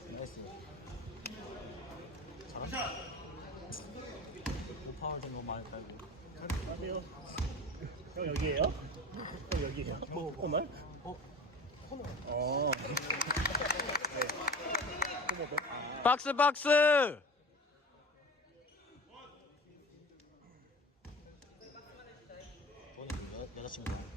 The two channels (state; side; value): normal; both; correlation 0.36